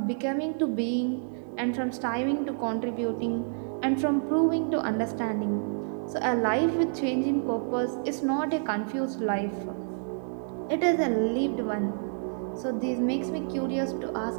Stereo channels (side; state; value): left; silent; digital silence